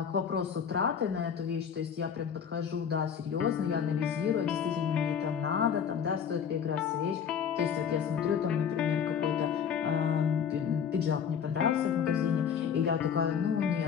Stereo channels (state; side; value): quieter; right; 7.6 dB